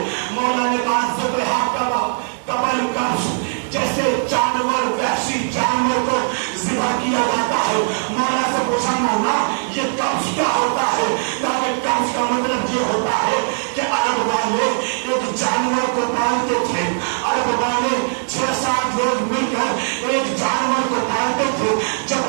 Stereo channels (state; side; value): silent; left; digital silence